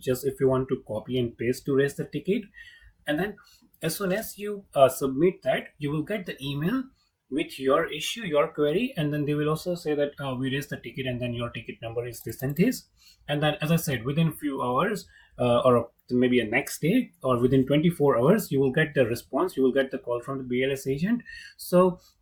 if you want to copy and paste to raise the ticket. And then as soon as you submit that, you will get the email with your issue, your query, and then they will also say that we raised the ticket and then your ticket number is this and this. And then, as I said, within few hours or maybe a next day or within 24 hours, you will get the response, you will get the call from the BLS agent. So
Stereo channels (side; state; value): both; identical; correlation 1.00